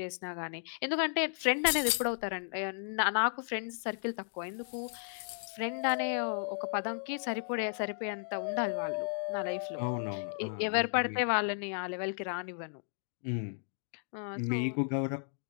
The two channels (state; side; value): silent; right; digital silence